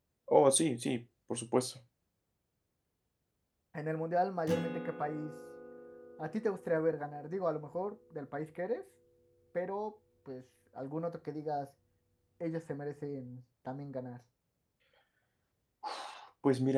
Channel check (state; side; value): identical; both; correlation 1.00